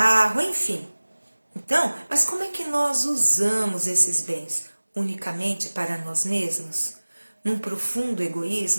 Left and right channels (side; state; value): both; inverted; correlation -1.00